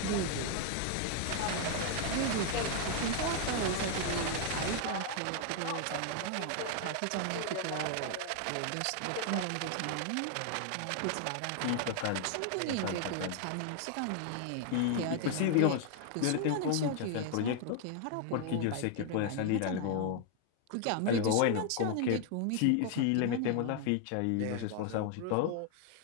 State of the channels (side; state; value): both; different; correlation 0.00